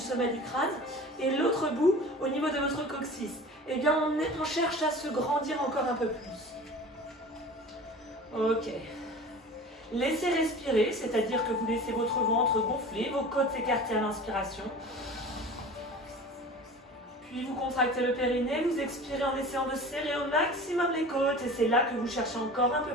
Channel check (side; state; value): both; normal; correlation 0.39